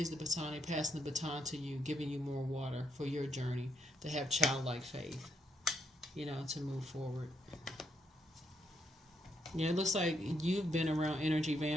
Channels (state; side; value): normal; both; correlation 0.77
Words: the baton, they're passing the baton to you, giving you more water for your journey, to have childlike faith, to move forward. Yeah, it looks like you've been around energy